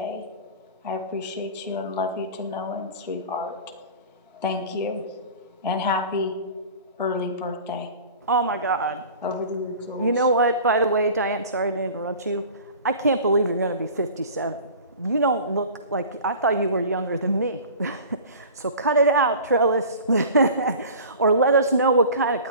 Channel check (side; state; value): both; inverted; correlation -0.40